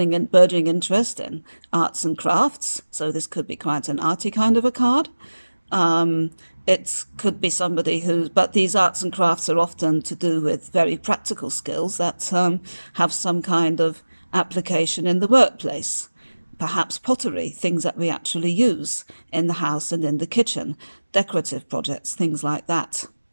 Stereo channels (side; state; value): both; inverted; correlation -1.00